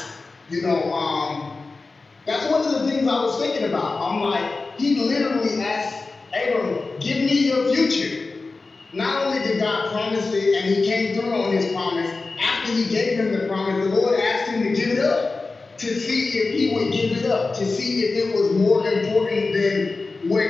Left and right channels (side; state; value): right; quieter; 3.8 dB